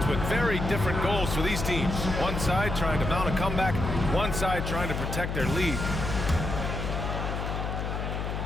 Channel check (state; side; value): noise; left; hum, 3 dB below the sound